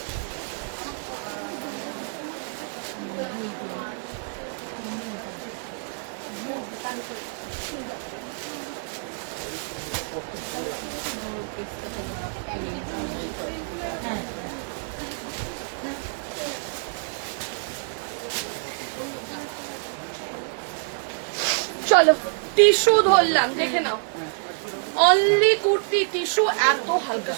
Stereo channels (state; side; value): silent; left; 60 dB below the other